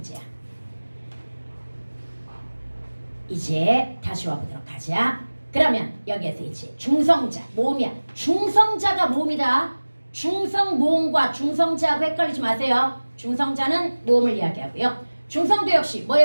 이제 다시 와보도록 하자. 그러면 여기에서 이제 중성자, 모음이야. 중성자가 모음이다. 중성 모음과 중성자하고 헷갈리지 마세요. 중성자는 모음을 이야기하고요. 중성도 역시 뭐의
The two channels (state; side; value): inverted; both; correlation -1.00